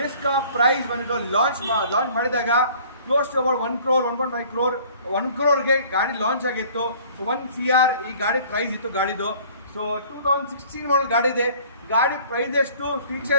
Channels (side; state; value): both; inverted; correlation -0.52